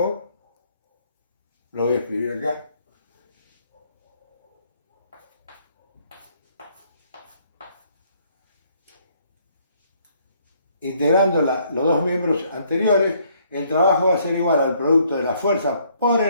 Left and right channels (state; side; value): inverted; both; correlation -0.66